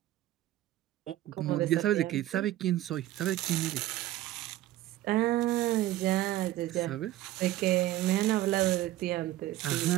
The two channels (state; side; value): quieter; left; 14.8 dB